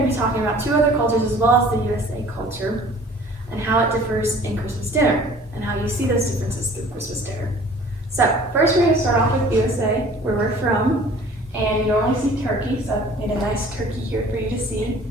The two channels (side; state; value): both; normal; correlation 0.50